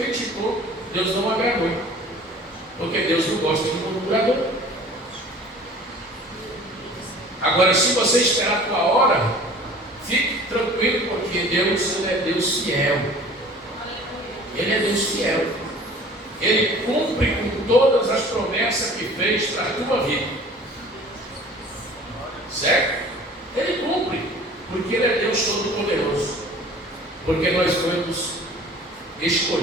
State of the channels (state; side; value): normal; both; correlation 0.47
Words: criticou, Deus não agradou. Porque Deus não gosta de murmurador. Agora, se você esperar a tua hora, fique tranquilo, porque Deus, Ele é Deus fiel. Ele é Deus fiel. Ele cumpre com todas as promessas que fez para a tua vida. Certo? Ele cumpre, porque Ele é Deus Todo-Poderoso. Porque nós fomos